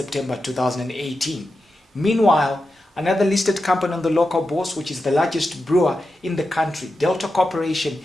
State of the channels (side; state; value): both; normal; correlation 0.90